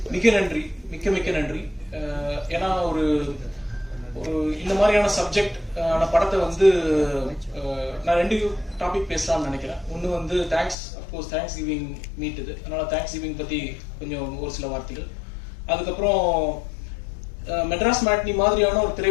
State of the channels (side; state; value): right; drops out; at 10.8 s